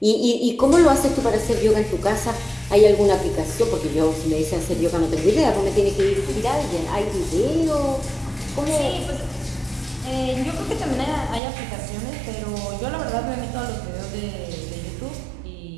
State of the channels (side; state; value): left; drops out; at 11.4 s